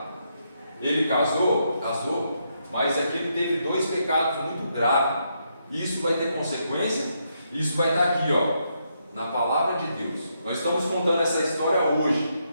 Ele casou, mas aqui ele teve 2 pecados muito graves. Isso vai ter consequência. Isso vai estar aqui, na palavra de Deus. Nós estamos contando essa história hoje,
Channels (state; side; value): inverted; both; correlation -0.79